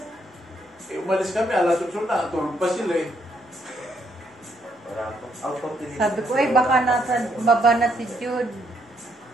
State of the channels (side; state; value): both; normal; correlation 0.73